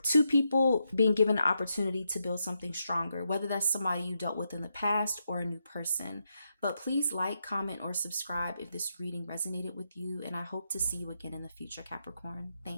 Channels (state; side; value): inverted; both; correlation -0.83